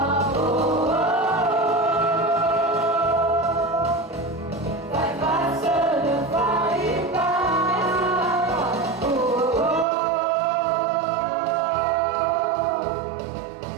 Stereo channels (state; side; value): drops out; left; at 9.9 s